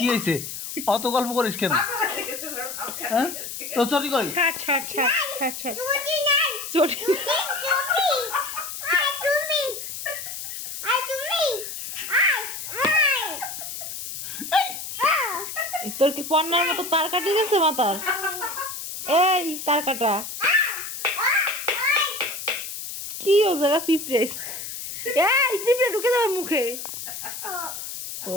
হয়েছে অত গল্প করিস কেন হ্যাঁ তো চটি কই ছাড় চটি নাই চটি তুমি আয় তুমি আয় তোর কি পন্নার মতো তার কাটি গেছে মাথার এই তার কাটা কি ও জায়গা পিঁপড়ে এই পিঁপড়ে ঢুকে যাবে মুখে ও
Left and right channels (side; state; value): left; noise; hiss, 8 dB below the sound